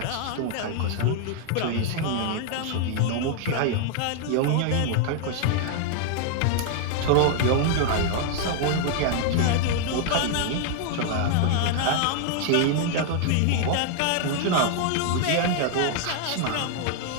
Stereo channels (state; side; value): different; both; correlation 0.00